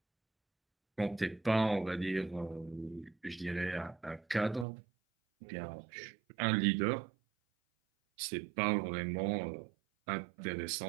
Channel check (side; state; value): left; drops out; at 4.7 s